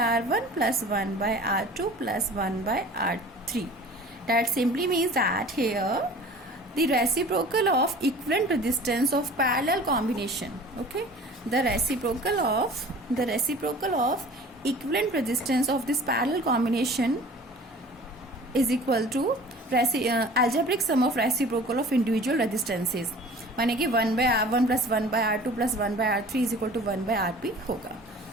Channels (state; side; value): normal; both; correlation 0.45